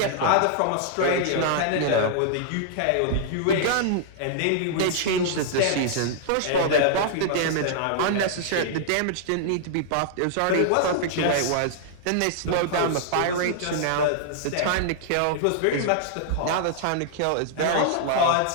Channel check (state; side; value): different; both; correlation -0.01